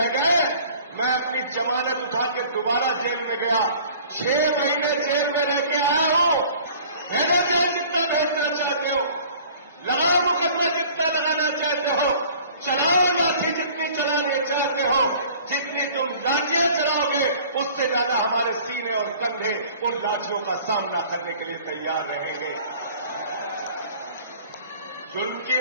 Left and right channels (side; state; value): both; inverted; correlation -0.48